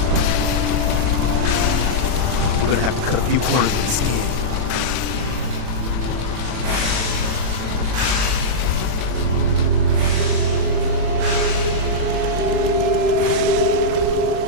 We're gonna have to cut a few corners with the skin.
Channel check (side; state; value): left; late; 40 ms